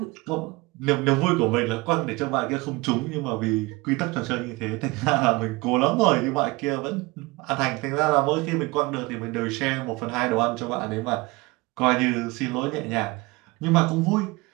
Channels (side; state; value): left; quieter; 23.6 dB